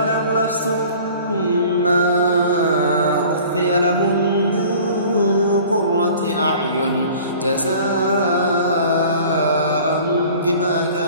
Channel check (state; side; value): inverted; both; correlation -0.47